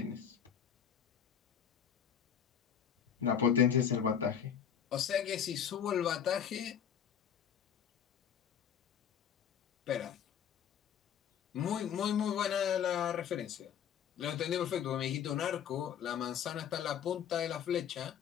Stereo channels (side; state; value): right; quieter; 8.4 dB